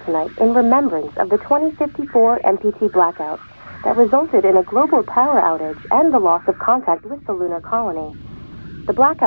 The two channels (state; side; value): inverted; both; correlation -1.00